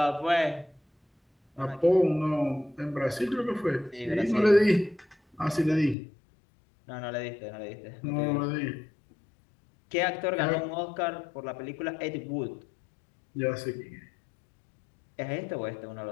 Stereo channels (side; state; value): right; drops out; at 6.0 s